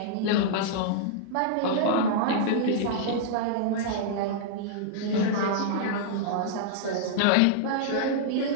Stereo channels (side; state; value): both; different; correlation -0.02